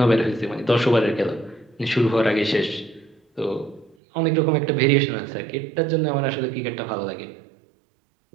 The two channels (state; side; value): drops out; left; at 4.0 s